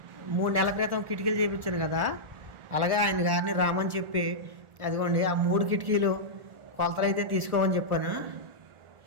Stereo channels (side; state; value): left; late; 1.4 ms